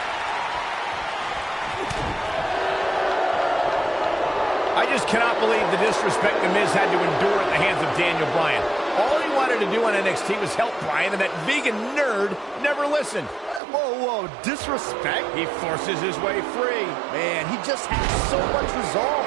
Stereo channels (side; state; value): left; drops out; at 13.6 s